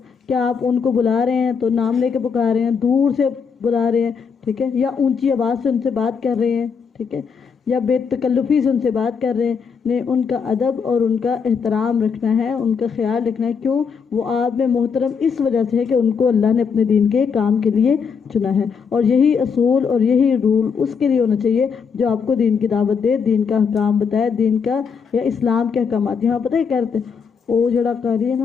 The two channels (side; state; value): right; quieter; 6.1 dB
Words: کیا آپ ان کو بلا رہے ہیں تو نام لے کے پکار رہے ہیں، دور سے بلا رہے ہیں، ٹھیک ہے، یا اونچی آواز سے ان سے بات کر رہے ہیں، ٹھیک ہے، یا بے تکلفی سے ان سے بات کر رہے ہیں؟ نہیں، ان کا ادب اور ان کا احترام رکھنا ہے، ان کا خیال رکھنا ہے۔ کیوں؟ وہ آپ میں محترم اس وجہ سے ہے کہ ان کو اللہ نے اپنے دین کے کام کے لیے چنا ہے، اور یہی اصول اور یہی رول اس کے لیے ہونا چاہیے جو آپ کو دین کی دعوت دے، دین کا احکام بتائے، دین کا یا اسلام کے احکامات۔ یہاں پتہ ہے کیا کہتے ہیں، وہ جڑا قاری ہے